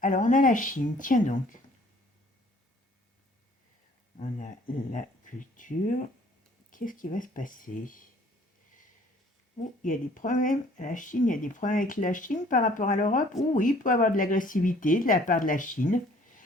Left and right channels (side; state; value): both; normal; correlation 0.56